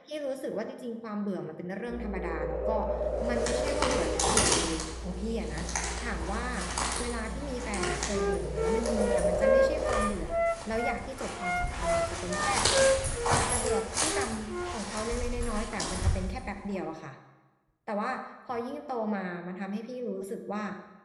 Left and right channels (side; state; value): both; identical; correlation 1.00